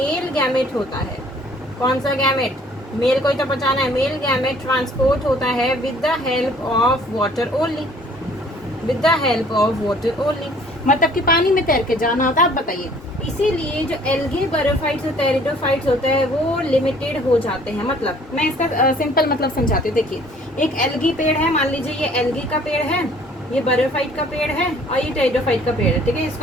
गैमेट होता है, कौन सा गैमेट? मेल को ही तो पहचाना है। मेल गैमेट ट्रांसपोर्ट होता है with the help of water only, with the help of water only, मतलब कि पानी में तैर के जाना होता है। आप बताइए, इसीलिए जो एल्गे, बरियोफाइट्स और टेरिडोफाइट्स होते हैं वो लिमिटेड हो जाते हैं। मतलब मैं इसका सिंपल मतलब समझाती हूँ। देखिए, एक एल्गी पेड़ है, मान लीजिए ये एल्गी का पेड़ है, ये बरियोफाइट का पेड़ है, और ये टेरिडोफाइट का पेड़ है। ठीक है,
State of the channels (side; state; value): both; normal; correlation 0.56